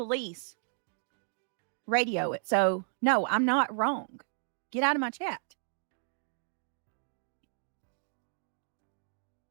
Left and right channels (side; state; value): left; silent; digital silence